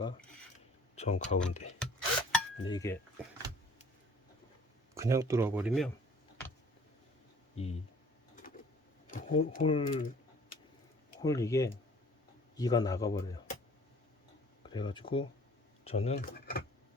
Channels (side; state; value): both; normal; correlation 0.53